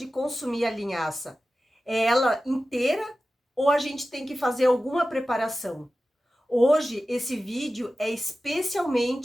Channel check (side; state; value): both; normal; correlation 0.95